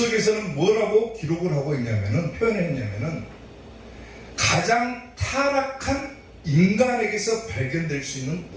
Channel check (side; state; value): both; identical; correlation 1.00